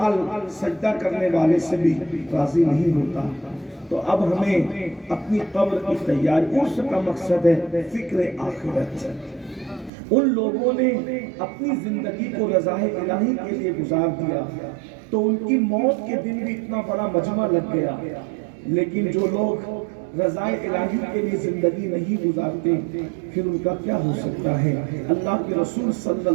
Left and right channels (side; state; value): left; drops out; at 9.9 s